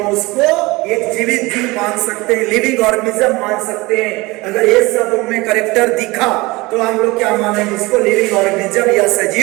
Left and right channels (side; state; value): left; quieter; 22.4 dB